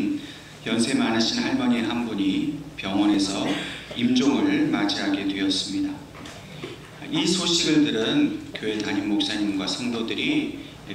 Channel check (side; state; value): both; identical; correlation 1.00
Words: 연세 많으신 할머니 한 분이 병원에서 임종을 맞이하게 되었습니다. 이 소식을 들은 교회 담임 목사님과 성도들이